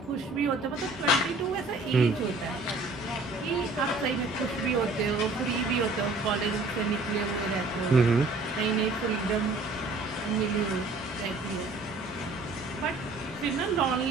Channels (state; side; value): quieter; left; 3.2 dB